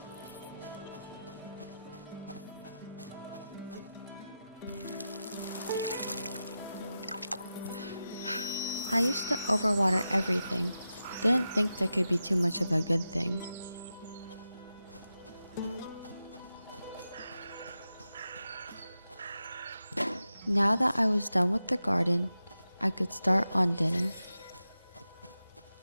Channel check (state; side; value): inverted; both; correlation -0.91